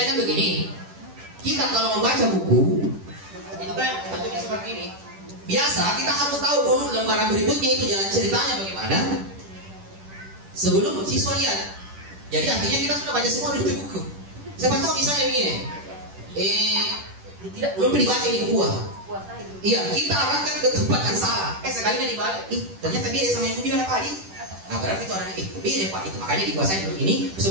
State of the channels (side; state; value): left; late; 10 ms